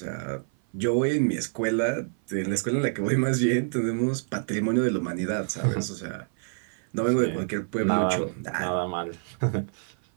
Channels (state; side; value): silent; left; 56 dB below the other